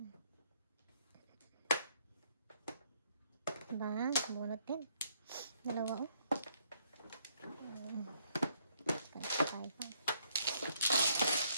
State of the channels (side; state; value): both; inverted; correlation -0.69